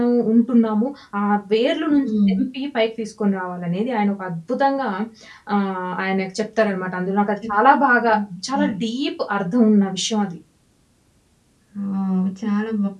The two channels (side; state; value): both; identical; correlation 1.00